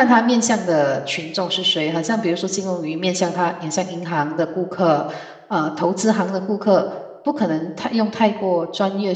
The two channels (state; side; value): identical; both; correlation 1.00